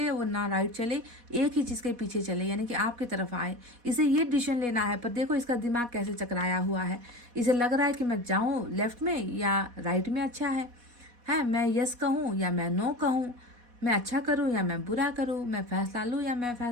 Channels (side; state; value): left; late; 4.2 ms